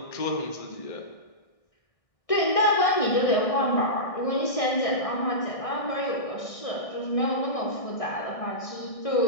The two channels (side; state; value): right; late; 1.6 ms